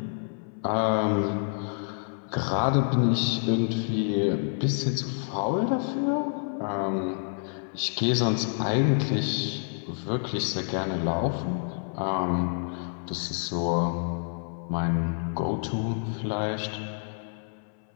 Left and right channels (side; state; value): right; silent; 59 dB below the other